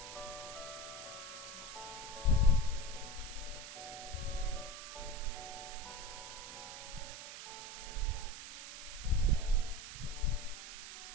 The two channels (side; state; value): right; noise; hiss, 10 dB below the sound